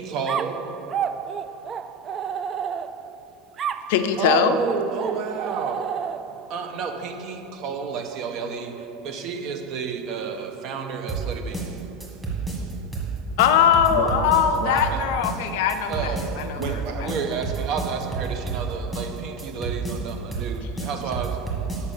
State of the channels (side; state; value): both; normal; correlation 0.12